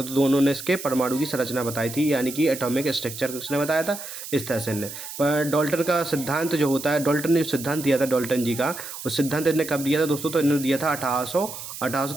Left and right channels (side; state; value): right; noise; hiss, 10 dB below the sound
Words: दोनों ने इसके परमाणु की संरचना बताई थी, यानी कि एटॉमिक स्ट्रक्चर किसने बताया था? इस तरह से इनने। पर डाल्टन का सिद्धांत जो होता है, डाल्टन ने जो सिद्धांत दिया था डाल्टन जी का, उस सिद्धांत इन्होंने कब दिया था दोस्तों? तो इन्होंने दिया था